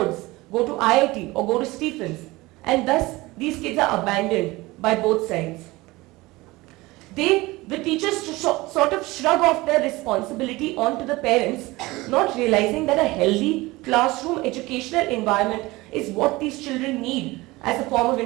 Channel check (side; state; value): left; quieter; 20.9 dB